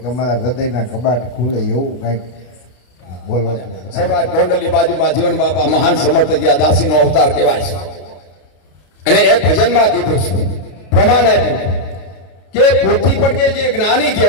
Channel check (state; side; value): late; right; 33 ms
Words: અમારા હૃદયના કબાટ ખુલે એવું કંઈક બોલો. સર્વાજ ગોંડલની બાજુમાં જીવન બાપા મહાન સમર્થજી આ દાસીનો અવતાર કહેવાય છે. અને એક ભજનમાં કીધું છે, પ્રમાણ આપ્યું કે પોથી પડકે જે જ્ઞાની